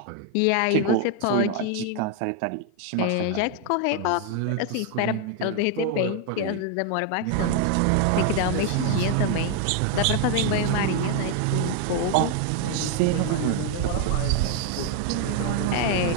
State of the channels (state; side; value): different; both; correlation 0.01